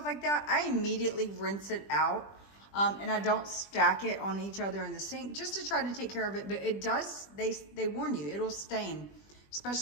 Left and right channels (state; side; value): late; right; 20 ms